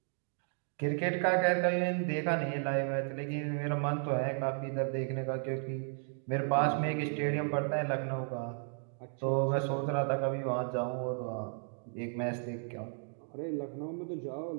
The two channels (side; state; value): left; silent; 55 dB below the other